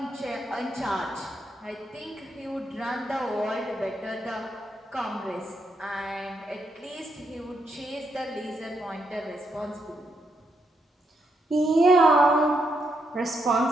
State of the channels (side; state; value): both; normal; correlation 0.79